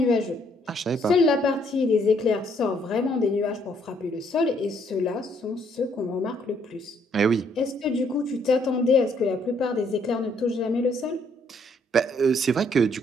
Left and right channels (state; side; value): normal; both; correlation 0.68